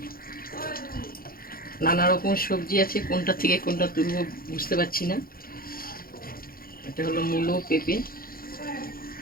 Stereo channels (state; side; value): late; right; 0.42 ms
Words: নানা রকম সবজি আছে, কোনটা থেকে কোনটা তুলবো বুঝতে পারছি না। এটা হলো মূলো, পেঁপে।